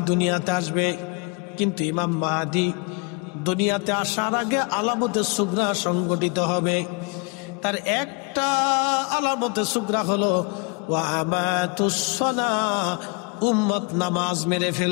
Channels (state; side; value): quieter; right; 33.1 dB